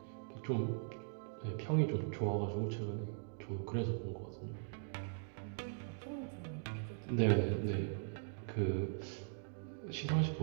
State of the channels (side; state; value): left; silent; digital silence